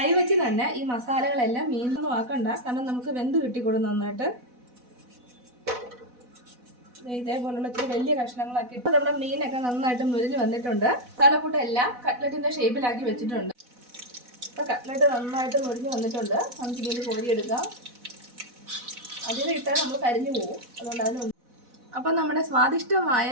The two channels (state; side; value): late; left; 4.1 ms